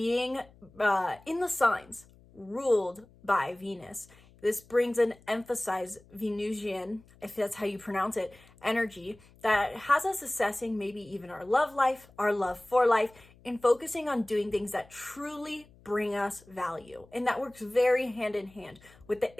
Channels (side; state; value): left; noise; hum, 26 dB below the sound